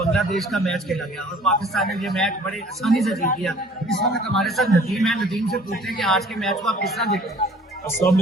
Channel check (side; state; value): both; normal; correlation 0.52